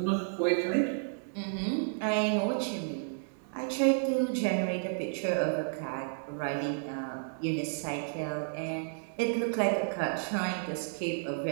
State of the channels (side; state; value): left; silent; digital silence